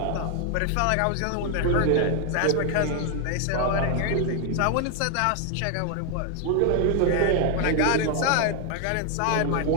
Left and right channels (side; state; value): both; different; correlation 0.00